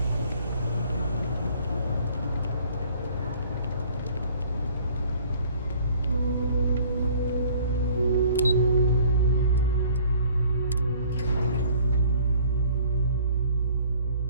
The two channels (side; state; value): both; inverted; correlation -0.54